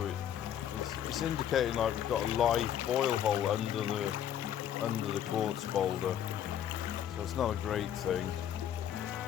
it's indicating like we've got a live boil hole under the quartz boulder, so it's not a great thing.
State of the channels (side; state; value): right; quieter; 10.2 dB